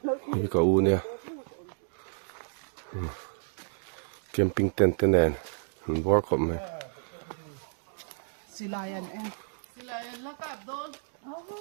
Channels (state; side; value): silent; left; digital silence